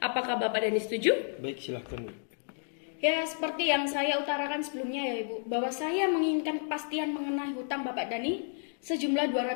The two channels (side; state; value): right; silent; digital silence